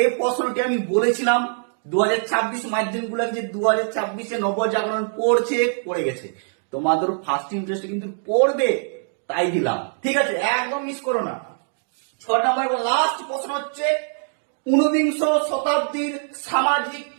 প্রশ্নটি আমি বলেছিলাম 2026 মাধ্যমিক গুলো যে 2026-এ নবজাগরণ পড়ে গেছে। তোমাদের ফার্স্ট ইন্টারেস্ট কিন্তু পড়বে, তাই দিলাম। ঠিক আছে, একদম মিস করো না। 6 নম্বর লাস্ট প্রশ্ন হচ্ছে 19 শতাব্দীর সামাজিক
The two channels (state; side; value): silent; left; 64 dB below the other